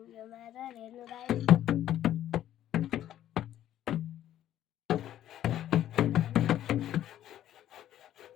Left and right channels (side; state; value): right; quieter; 12.0 dB